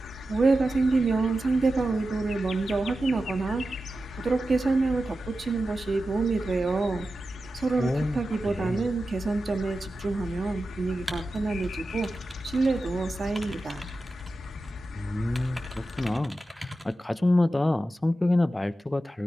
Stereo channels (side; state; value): both; normal; correlation 0.92